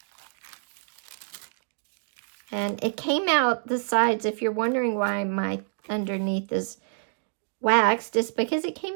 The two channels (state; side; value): silent; left; digital silence